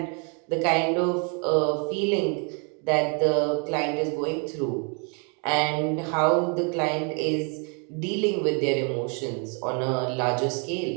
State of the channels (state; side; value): quieter; left; 37.0 dB